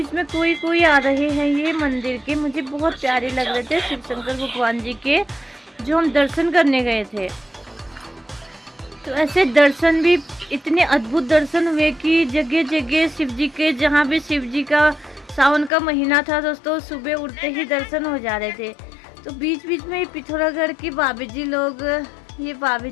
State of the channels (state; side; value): drops out; right; at 15.7 s